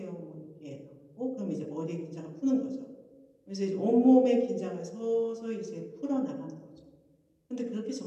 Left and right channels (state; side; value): identical; both; correlation 1.00